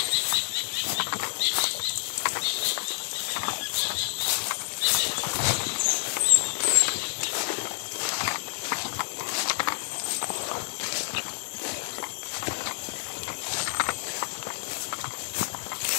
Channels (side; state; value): right; silent; digital silence